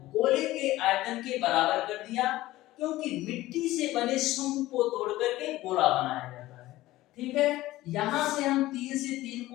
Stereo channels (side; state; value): right; quieter; 16.8 dB